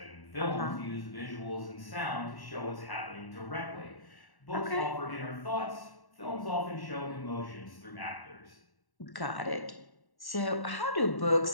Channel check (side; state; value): right; late; 1.1 ms